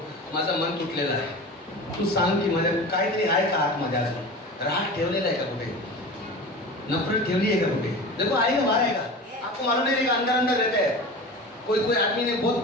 माझा मन तुटलेला आहे, तू सांग की माझ्या काहीतरी आहे का आतमध्ये अजून? राग ठेवलेला आहे का कुठे? नफरत ठेवली है का कुठे? देखो आएगा, बाहर आएगा, आपको मालूम नहीं रहेगा, अंदर अंदर रहता है। कोई आदमी ने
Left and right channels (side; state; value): both; normal; correlation 0.33